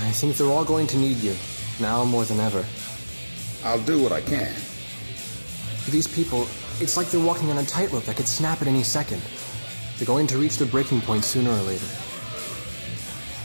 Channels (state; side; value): inverted; both; correlation -1.00